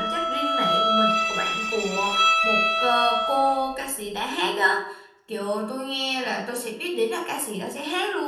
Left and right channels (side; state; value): both; identical; correlation 1.00